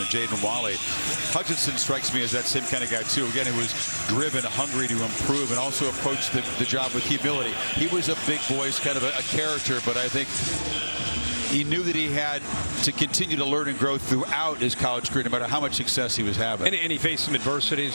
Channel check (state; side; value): inverted; both; correlation -1.00